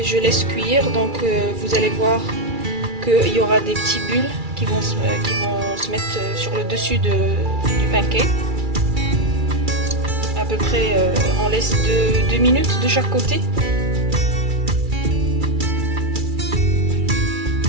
je laisse cuire, donc vous allez voir qu'il y aura des petits bulles qui vont se mettre sur le dessus du pancake. À peu près, on laisse 2 minutes de chaque côté.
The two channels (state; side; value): late; left; 2.3 ms